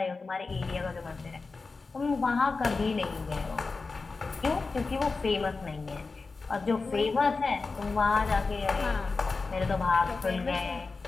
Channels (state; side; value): quieter; right; 4.1 dB